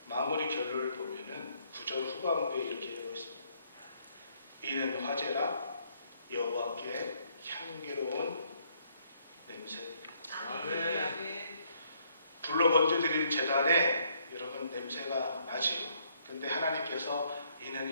마무리 결론을 보면은 9절 후반부에 이렇게 되어 있습니다. 이는 화제라 여호와께 향기로운 냄새. 아멘. 불로 번제드린 제단에 여러분 냄새가 나지요. 근데 하나님께서 이는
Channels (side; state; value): both; inverted; correlation -0.69